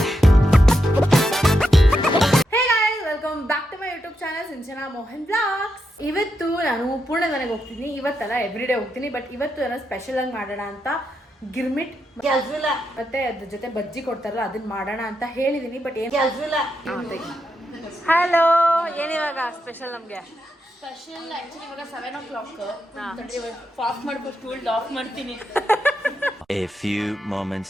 welcome back to my YouTube channel Sinchana Mohan blogs. ಇವತ್ತು ನಾನು ಪೂರ್ಣ ಮನೆಗೆ ಹೋಗ್ತೀನಿ. ಇವತ್ತಲ್ಲ ಎವ್ರಿಡೇ ಹೋಗ್ತೀನಿ, ಬಟ್ ಇವತ್ತು ಏನೋ ಸ್ಪೆಷಲ್ ಆಗಿ ಮಾಡೋಣ ಅಂತ ಗಿರ್ಮಿಟ್ ಕೆಲಸ ಇಲ್ಲ ಮತ್ತೆ ಅದ್ರ ಜೊತೆ ಬಜ್ಜಿ ಕೊಡ್ತಾರಲ್ಲ ಅದನ್ನ ಮಾಡೋಣ ಅಂತ ಹೇಳಿದೀನಿ. ಬಟ್ ಏನ್ ಕೆಲಸ ಇಲ್ಲ. ಹಲೋ, ಏನಿವಾಗ ಸ್ಪೆಷಲ್ ನಮ್ಗೆ? ಸ್ಪೆಷಲ್ ಆಕ್ಚುಲಿ ಇವಾಗ 7 o'clock ಆಫ್ ಮಾಡ್ಬೇಕು ಫುಲ್ ಆಫ್ ಮಾಡ್ತೀನಿ. A few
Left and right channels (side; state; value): both; normal; correlation 0.85